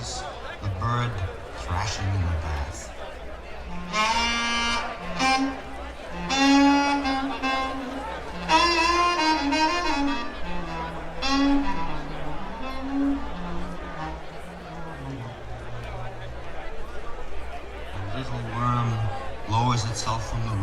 the bird thrashing in the bath. A little worm lowers itself from the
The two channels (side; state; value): both; identical; correlation 1.00